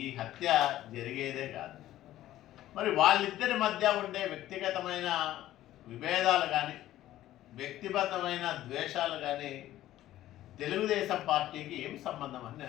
ఈ హత్య జరిగేదే కాదు. మరి వాళ్ళిద్దరి మధ్య ఉండే వ్యక్తిగతమైన విభేదాలు కానీ, వ్యక్తిగతమైన ద్వేషాలు కానీ తెలుగుదేశం పార్టీకి ఏం సంబంధం అని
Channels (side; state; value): right; quieter; 14.0 dB